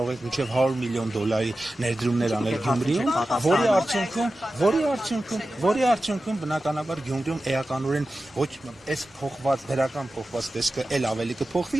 եք մինչեւ 100 միլիոն դոլարի ներդրումներ անել Գյումրիում, որի արդյունքում բնականաբար Գյումրիում էականորեն ոչ այս դրական փոխված տեսքը էլ ավելի կփոխվի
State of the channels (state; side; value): normal; both; correlation 0.94